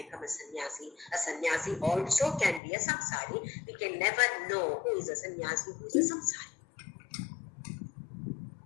a sannyasi. A sannyasi also can be a samsari. We can never know who is a sannyasi, who is a samsari.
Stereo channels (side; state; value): right; drops out; at 2.6 s